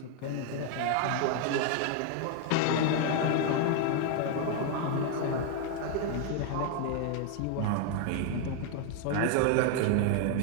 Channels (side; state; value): both; different; correlation 0.00